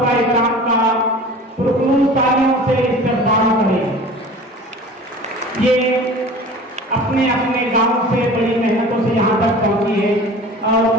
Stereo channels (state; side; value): normal; both; correlation 0.41